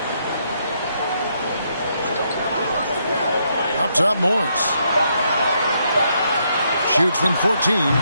Up top, Morris. Shoots from 14.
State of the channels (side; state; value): both; inverted; correlation -0.76